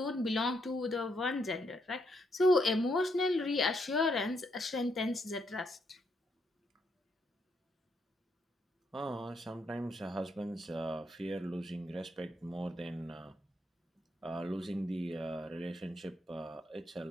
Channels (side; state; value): both; normal; correlation 0.76